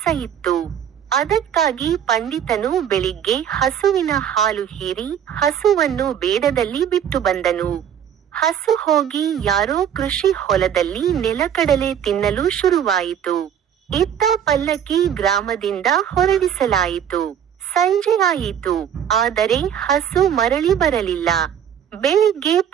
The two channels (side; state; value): left; quieter; 9.1 dB